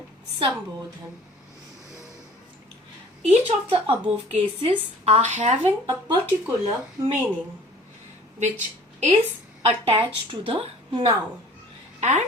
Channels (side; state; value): both; normal; correlation 0.49